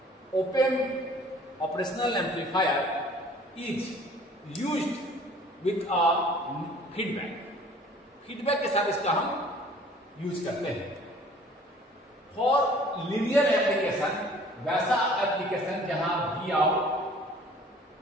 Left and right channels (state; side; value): normal; both; correlation 0.52